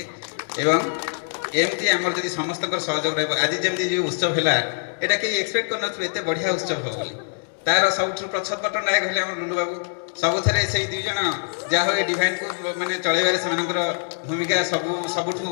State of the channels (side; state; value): right; silent; digital silence